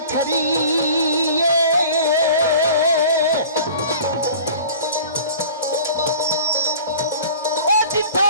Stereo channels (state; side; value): inverted; both; correlation -0.43